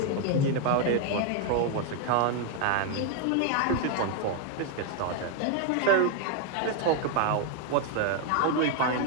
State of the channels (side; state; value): both; different; correlation 0.01